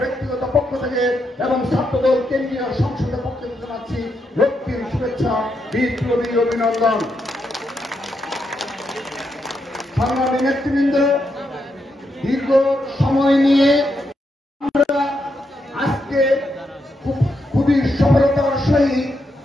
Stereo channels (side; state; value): both; normal; correlation 0.82